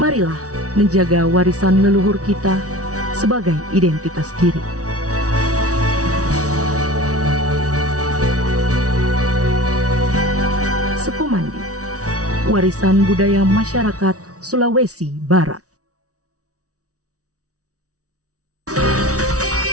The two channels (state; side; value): late; left; 0.67 ms